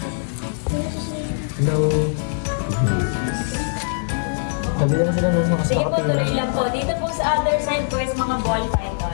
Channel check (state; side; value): silent; right; digital silence